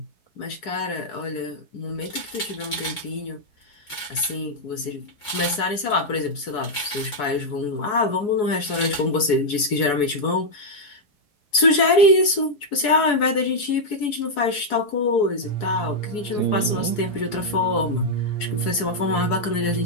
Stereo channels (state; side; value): late; right; 4.7 ms